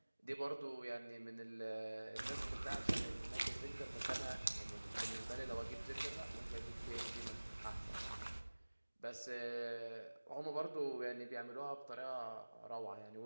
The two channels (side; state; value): both; inverted; correlation -1.00